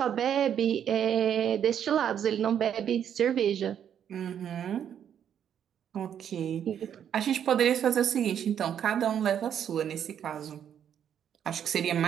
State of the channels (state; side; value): quieter; left; 9.1 dB